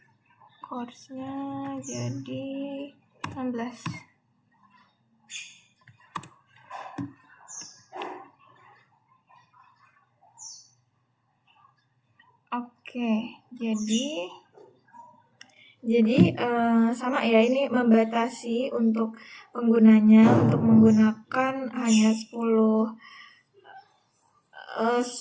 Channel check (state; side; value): identical; both; correlation 1.00